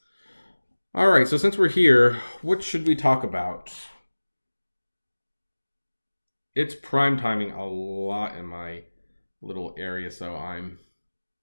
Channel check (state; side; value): inverted; both; correlation -1.00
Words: all right, so since we're here, what should we talk about? It's prime timing a lot in my little area, so